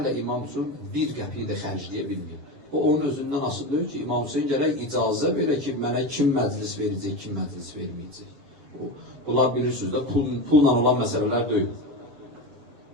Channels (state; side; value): late; left; 7.5 ms